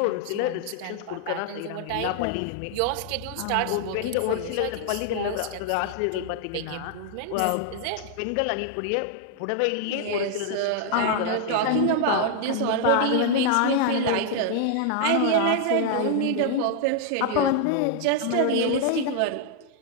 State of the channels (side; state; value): both; different; correlation 0.00